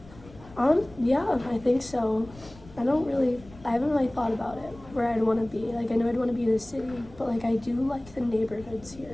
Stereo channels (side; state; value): left; noise; rumble, 21 dB below the sound